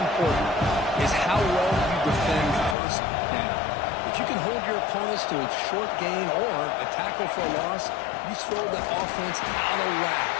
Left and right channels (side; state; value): right; drops out; at 2.8 s